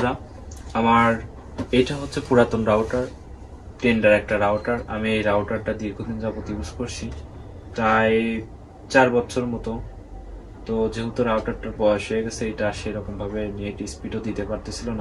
আমার এটা হচ্ছে পুরাতন রাউটার, টেন্ডার একটা রাউটার। আমি এই রাউটারটা দীর্ঘদিন যাবত ইউজ করছি, প্রায় 4 বছর মতো। তো যেহেতু রাউটারটার বয়স হয়ে গেছে, এটা সেরকম ভাবে নেট স্পিডও দিতে পারতেছিল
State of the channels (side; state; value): both; identical; correlation 1.00